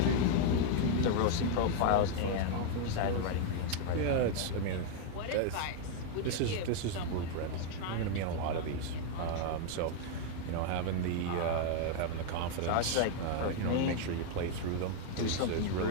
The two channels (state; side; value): different; both; correlation 0.00